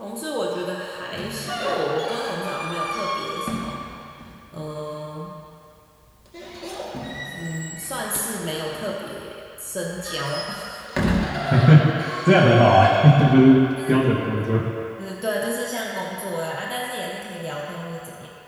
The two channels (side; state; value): both; identical; correlation 1.00